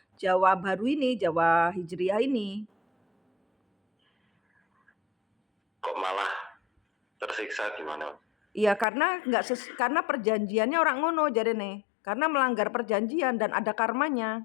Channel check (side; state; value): right; drops out; at 8.8 s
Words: baru ini, Jawa Hijriah ini. Kok malah tersiksa gimana? Iya, karena perjanjiannya orang ngono jarene. Karena melanggar perjanjian dan ada